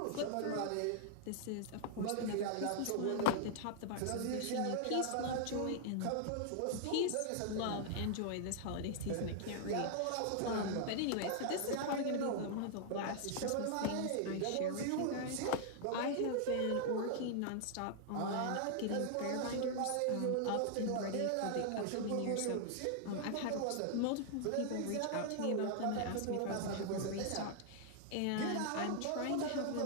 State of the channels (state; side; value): different; both; correlation -0.01